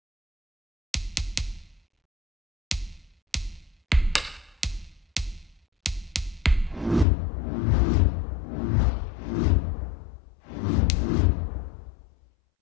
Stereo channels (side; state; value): right; drops out; at 7.1 s